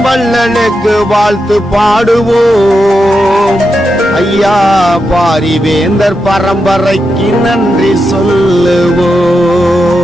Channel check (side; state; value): both; normal; correlation 0.87